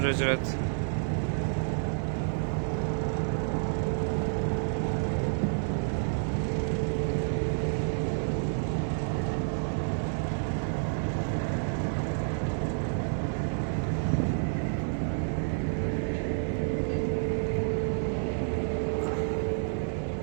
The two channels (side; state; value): left; silent; 58 dB below the other